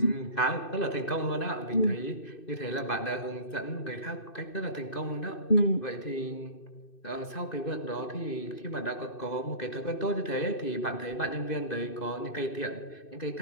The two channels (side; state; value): right; late; 2.6 ms